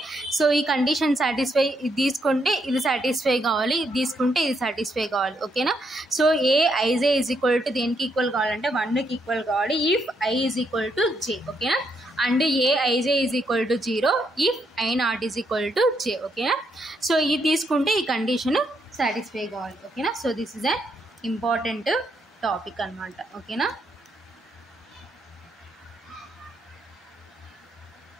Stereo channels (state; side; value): normal; both; correlation 0.76